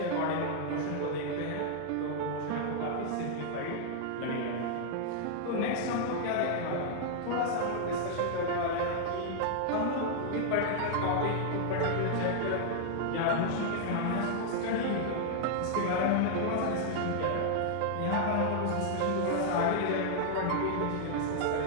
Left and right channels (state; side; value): different; both; correlation -0.01